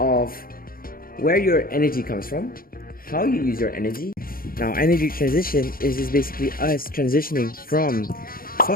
where your energy comes from, how you use your energy. Now, energy transition is just basically us transitioning from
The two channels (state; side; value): late; right; 0.42 ms